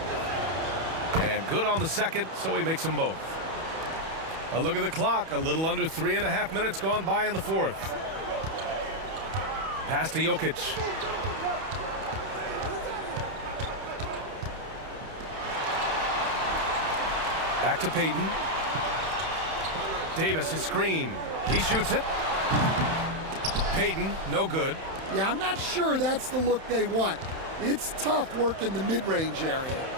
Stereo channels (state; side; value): late; left; 31 ms